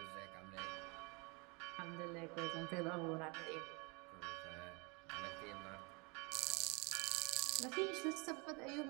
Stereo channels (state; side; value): quieter; left; 29.8 dB